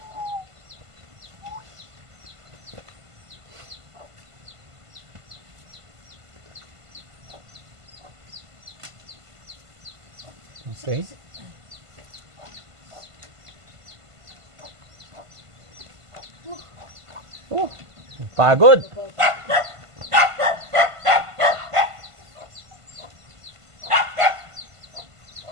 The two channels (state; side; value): late; left; 1.5 ms